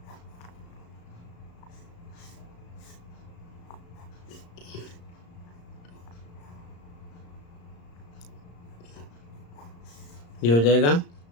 ये हो जाएगा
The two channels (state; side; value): late; right; 35 ms